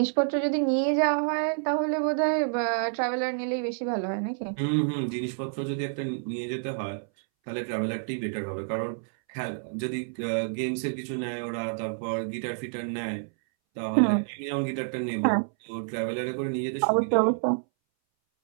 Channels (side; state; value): left; silent; 59 dB below the other